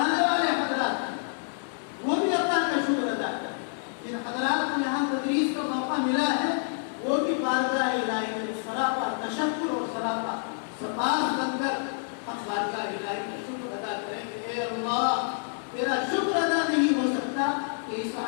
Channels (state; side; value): silent; right; 59 dB below the other